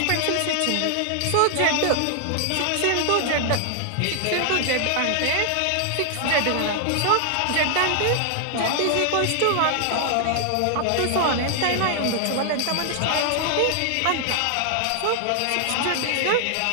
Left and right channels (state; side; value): different; both; correlation 0.00